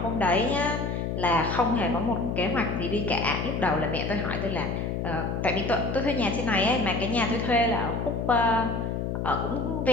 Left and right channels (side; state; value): left; noise; hum, 2 dB below the sound